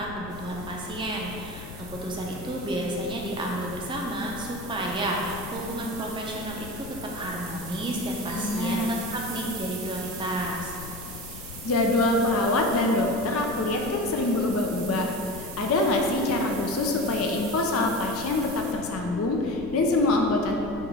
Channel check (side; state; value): left; noise; rumble, 13 dB below the sound